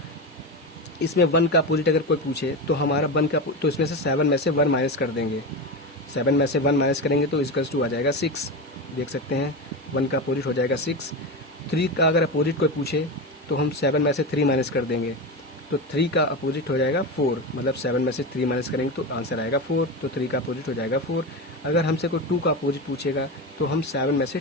इसमें 1 का अपोजिट अगर कोई पूछे तो हमारा 1 का तो इसमें से 7 में से 1 माइनस कर देंगे। 7 में से 1 माइनस करेंगे तो = आ जाएगा 6। देख सकते हैं 1 का अपोजिट हो जाएगा 6। 3 का अगर अपोजिट कोई पूछे तो हम 7 में से 3 माइनस कर देंगे, तो 3 का अपोजिट हो जाएगा 4। मतलब 7 में से 3 माइनस करेंगे तो आंसर आएगा 4, तो 3 का अपोजिट हो जाएगा 4। अगर हमसे कोई 2 का अपोजिट पूछेगा तो हम 7 में से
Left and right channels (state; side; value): normal; both; correlation 0.19